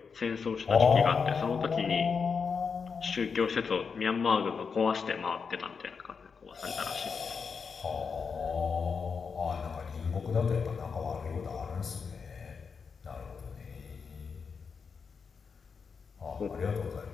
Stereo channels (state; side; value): quieter; right; 5.6 dB